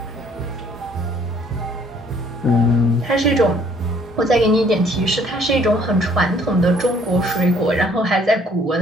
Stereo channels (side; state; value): both; normal; correlation 0.60